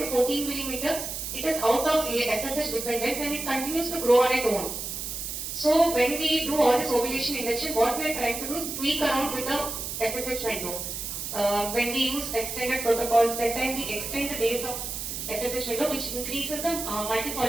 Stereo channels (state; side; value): noise; right; hiss, 5 dB below the sound